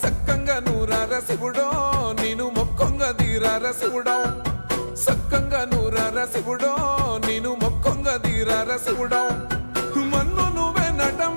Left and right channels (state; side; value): inverted; both; correlation -1.00